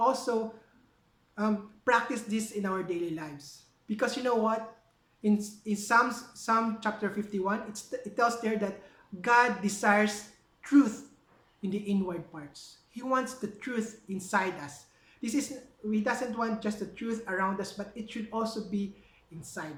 practice this in our daily lives. Because you know what? In Psalm chapter 51, it tells there that God desires truth in the inward parts. He wants the truth inside us. This is He doesn't want just the truth around us, but it should also be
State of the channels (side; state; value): both; identical; correlation 1.00